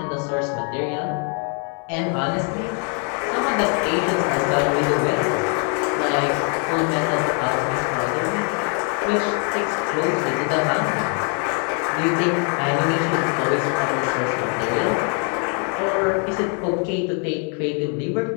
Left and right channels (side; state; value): right; quieter; 40.0 dB